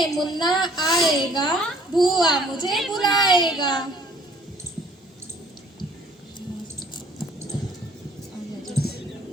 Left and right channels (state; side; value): normal; both; correlation 0.57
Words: मुन्ना आएगा, बुआ मुझे बुलाएगा।